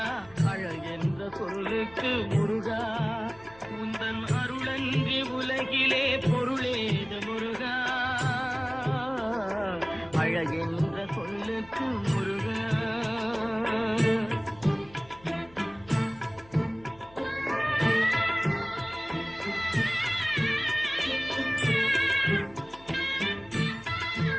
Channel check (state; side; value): noise; left; hum, 24 dB below the sound